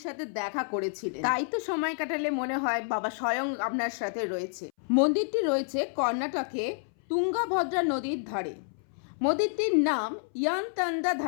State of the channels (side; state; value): right; silent; 58 dB below the other